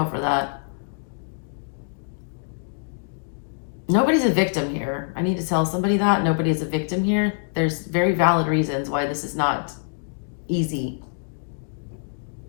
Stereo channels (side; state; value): right; silent; digital silence